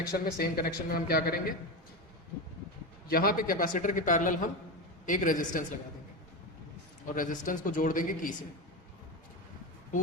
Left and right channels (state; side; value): normal; both; correlation 0.18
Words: में, सेम कनेक्शन में हम क्या करेंगे, यहाँ पे कैपेसिटर के पैरेलल हम एक रेजिस्टेंस लगा देंगे और रेजिस्टेंस को जोड़ देंगे की से।